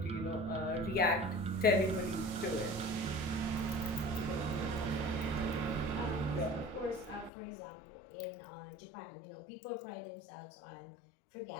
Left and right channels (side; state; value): right; drops out; at 7.3 s